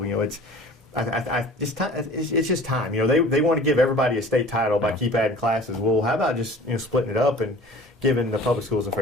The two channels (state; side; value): normal; both; correlation 0.44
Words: It's just time. They want to give everybody a state title by keep adding classes. Well, how about just splitting it up and giving the public schools a